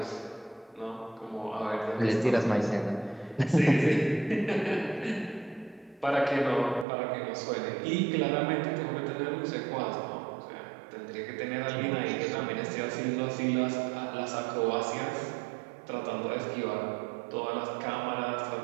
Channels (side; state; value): left; drops out; at 6.9 s